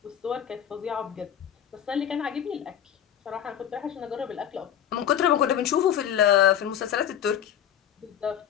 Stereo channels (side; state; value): right; quieter; 9.9 dB